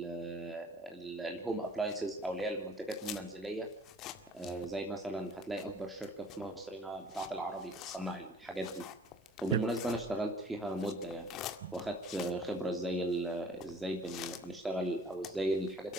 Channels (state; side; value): normal; both; correlation 0.52